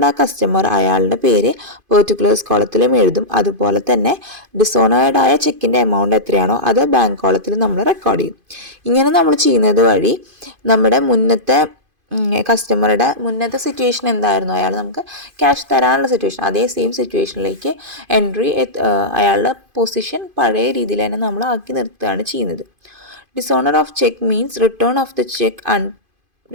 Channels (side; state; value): left; late; 2.5 ms